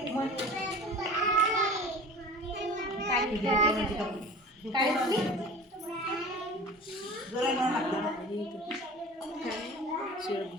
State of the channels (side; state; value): both; normal; correlation 0.39